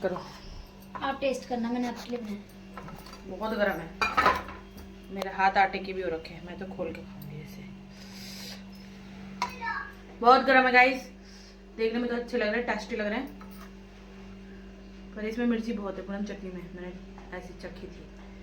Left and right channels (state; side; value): identical; both; correlation 1.00